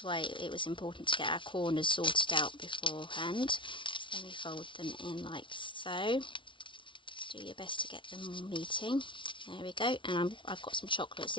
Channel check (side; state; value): right; late; 0.24 ms